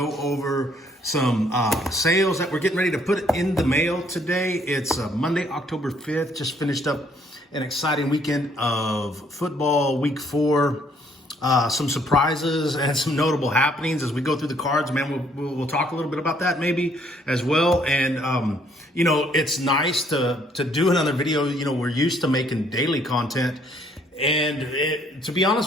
over some sales that we're getting ready to put in the mail today. It's Monday, October 5th. Just finished up an exciting weekend of football, week 4. Some surprises and some notable happenings as we go through the cards, man. We'll talk a little bit about that maybe as well. And, it's nice to do another video. We're used to making daily content. And to be honest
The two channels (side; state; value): both; normal; correlation 0.65